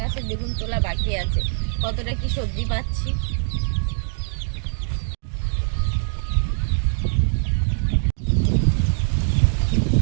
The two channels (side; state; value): left; silent; 64 dB below the other